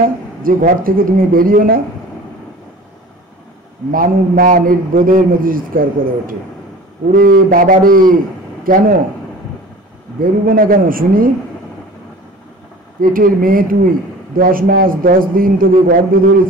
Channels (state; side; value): normal; both; correlation 0.42